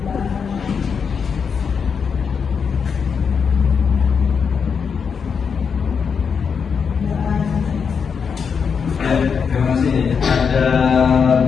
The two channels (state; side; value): quieter; right; 6.2 dB